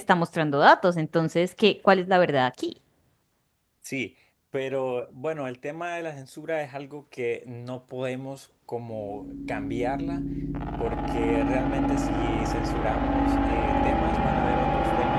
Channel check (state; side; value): identical; both; correlation 1.00